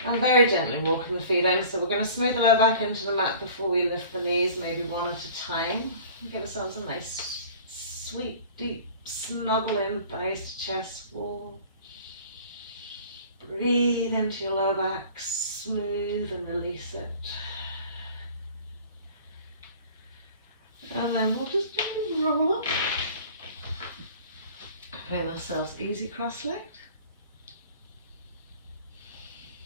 And very gently walking the feet in. So we're going to smooth the lower back into the mat before we lift the knees, maybe one at a time. Give ourselves a nice, sweet, deep snuggle in, thighs to chest wall. Breathe into your lower back, smooth and release it. And then we'll just roll up. Putting ourselves easy cross-legged.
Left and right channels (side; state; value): both; inverted; correlation -0.46